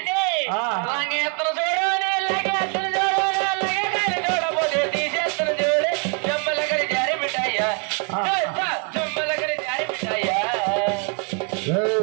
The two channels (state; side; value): quieter; left; 36.7 dB